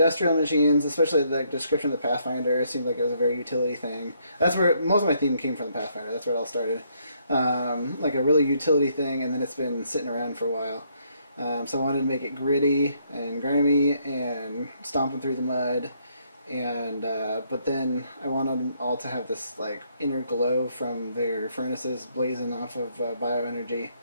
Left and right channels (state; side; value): inverted; both; correlation -0.71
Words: machines, especially the description of the Pathfinder. It seemed like it was a very utility thing. That's where most of my theme came from, the Pathfinder. That's where it all started. Like a really utility thing, and then it's been sitting around for a while. So I wanted to make it gritty and grimy and stomping through the mud, and but then I wanted them all to have this like inner glow from their furnaces blazing off of bioenergy.